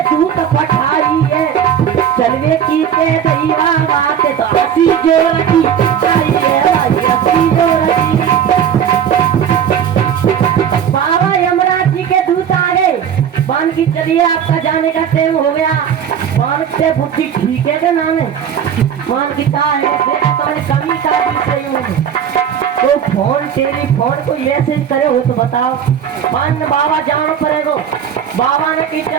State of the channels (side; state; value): left; quieter; 8.6 dB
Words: दूत पठाई है चलवे की ते दैवा बात तो हसी जोरती आई है हसी जोरती बाबा यमराज जी के दूत आ गए मान की चलिए आपका जाने का टाइम हो गया मान से बुद्धि ठीक है क्या नाम है मान की क्या है देखा तुम्हारी कमी का सही होगी तो फोन टेलीफोन को मैसेज करे हो तो बताओ मान बाबा जानो पड़ेगा बाबा ने कि